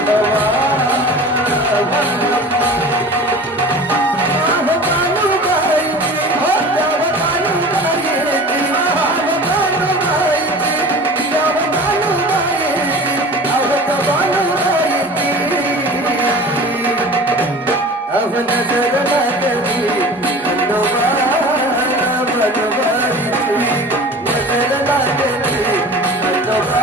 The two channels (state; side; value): normal; both; correlation 0.39